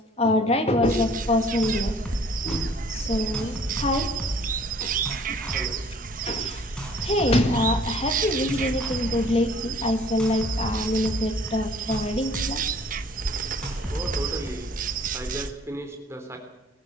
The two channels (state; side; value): normal; both; correlation 0.55